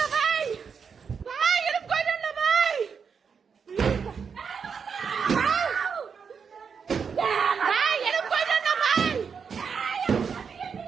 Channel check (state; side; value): quieter; left; 6.2 dB